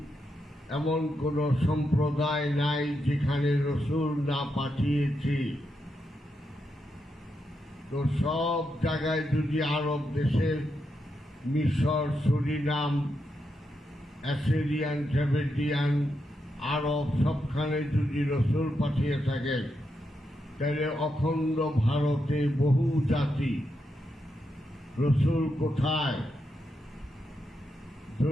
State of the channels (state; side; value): normal; both; correlation 0.84